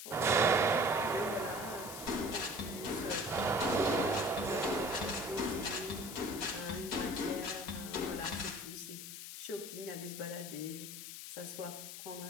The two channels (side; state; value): left; noise; hiss, 9 dB below the sound